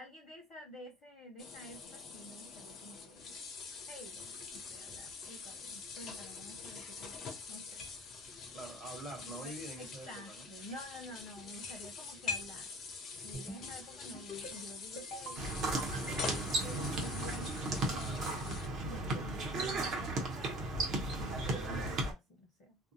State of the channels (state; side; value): normal; both; correlation 0.44